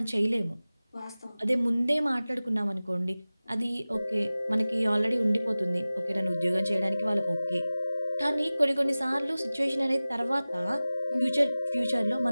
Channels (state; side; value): inverted; both; correlation -0.98